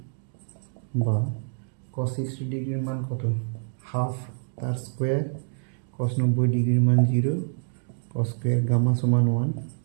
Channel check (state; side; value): silent; left; 61 dB below the other